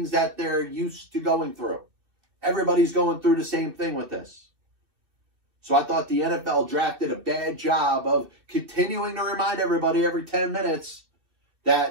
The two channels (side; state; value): left; late; 2.4 ms